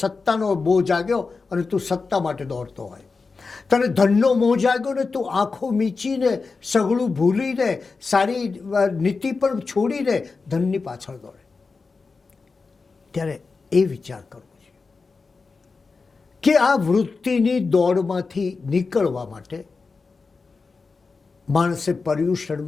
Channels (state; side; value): quieter; right; 4.4 dB